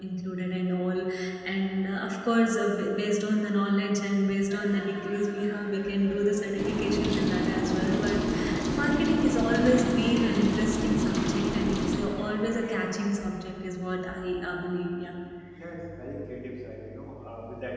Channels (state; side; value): identical; both; correlation 1.00